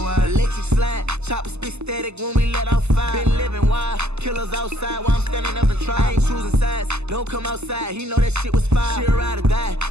Electric slide, chopper spit static when we let off fire. Been living wild, killers outside while I'm standing up and try. I ain't choosing sides, don't come outside, he know that shit was fire. She ride or die,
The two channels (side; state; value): left; late; 0.81 ms